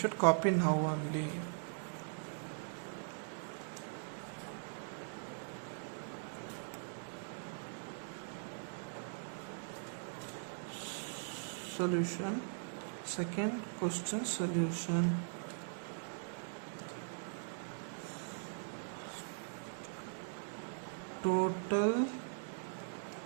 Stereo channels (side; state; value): left; silent; digital silence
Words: copy now only. Solution. Second question solution. Total